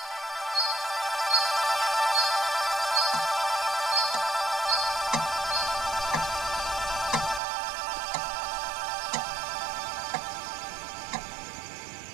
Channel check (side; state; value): left; drops out; at 7.4 s